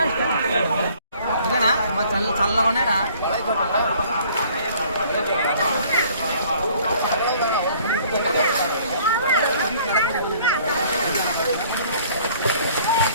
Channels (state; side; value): inverted; both; correlation -0.56